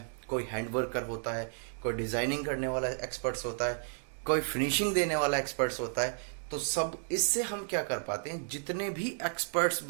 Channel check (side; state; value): left; silent; digital silence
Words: कोई हैंड वर्कर होता है, कोई डिजाइनिंग करने वाला एक्सपर्ट्स होता है, कोई फिनिशिंग देने वाला एक्सपर्ट्स होता है। तो सब इससे हम क्या कर पाते हैं, जितने भी एक्सपर्ट्स